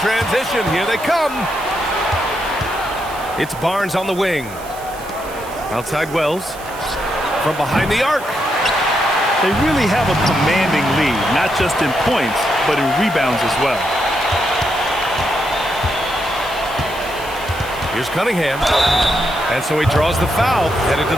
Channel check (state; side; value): noise; right; hiss, 18 dB below the sound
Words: transition, here they come. It's Barnes on the wing. Outside Wells. From behind the arc. They really have a commanding lead, not just in points, but in rebounds as well. Here's Cunningham. And so he draws the foul, headed to